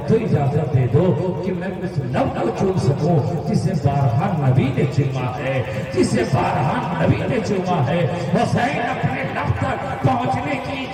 تو اجازت دے دو کہ میں اس لب کو چوم سکوں جسے بارہا نبی نے چوما ہے، جسے بارہا نبی نے چوما ہے، حسین اپنے لب تک پہنچنے کی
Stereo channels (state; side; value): identical; both; correlation 1.00